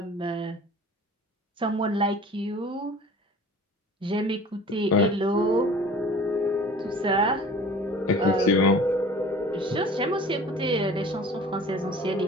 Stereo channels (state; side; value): normal; both; correlation 0.44